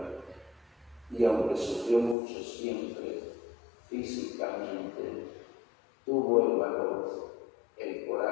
y aunque sufrió mucho siempre físicamente, tuvo el valor, el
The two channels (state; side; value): drops out; right; at 2.1 s